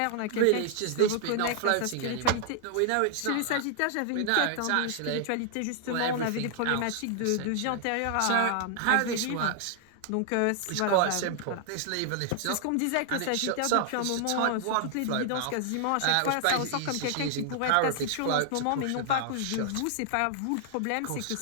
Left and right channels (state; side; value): different; both; correlation 0.00